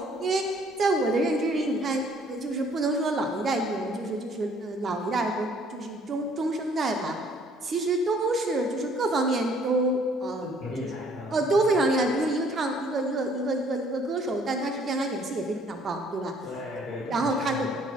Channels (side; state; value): both; normal; correlation 0.60